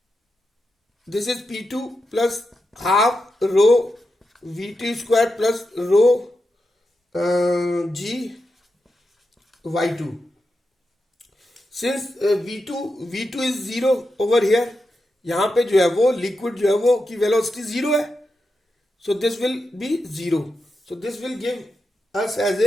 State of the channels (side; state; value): both; normal; correlation 0.88